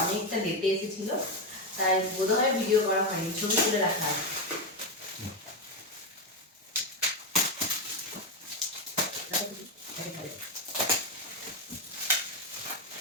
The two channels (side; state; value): both; normal; correlation 0.09